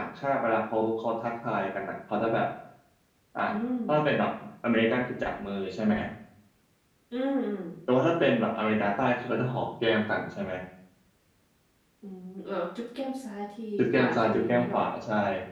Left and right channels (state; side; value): identical; both; correlation 1.00